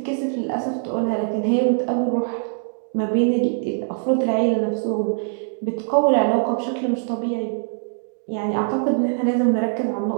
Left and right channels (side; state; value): left; silent; digital silence